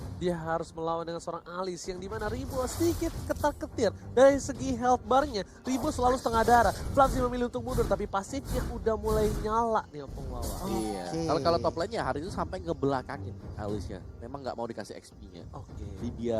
Dia harus melawan dengan seorang Alice yang dimana Ribo sedikit ketar-ketir. Dari segi health bar-nya, Ribo selalu setengah darah. Flamsy memilih untuk mundur, tapi pasifnya udah mulai nyala nih Opung Wawa. Iya. Kalau top lane-nya hari itu sampai ngebelakangin Alice-nya. Memang nggak mau dikasih XP-nya. Oke.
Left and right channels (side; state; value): both; identical; correlation 1.00